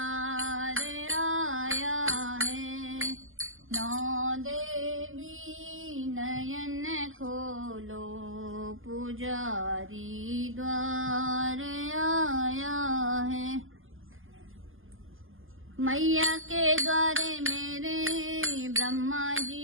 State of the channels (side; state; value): left; late; 0.59 ms